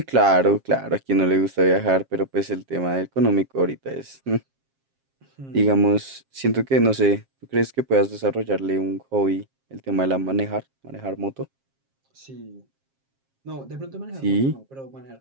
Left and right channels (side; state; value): left; late; 7.5 ms